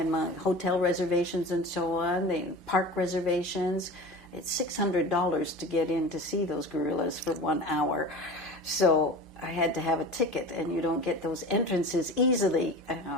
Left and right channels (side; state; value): right; noise; hum, 25 dB below the sound